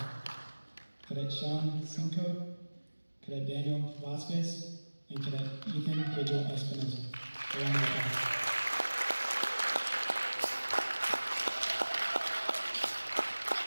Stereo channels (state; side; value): inverted; both; correlation -1.00